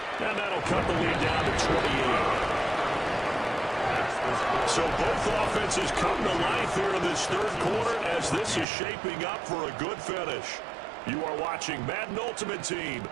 And that'll cut the lead down to 28. So both offenses come to life here in this third quarter as this is shaping up for a good finish. You are watching Madden Ultimate Team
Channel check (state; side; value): drops out; left; at 8.7 s